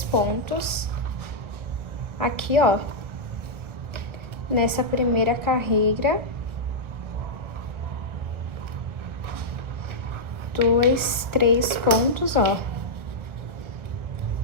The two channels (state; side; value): late; left; 1.3 ms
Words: pontos aqui, ó, nessa primeira carreira. 2, 3 pontos, ó.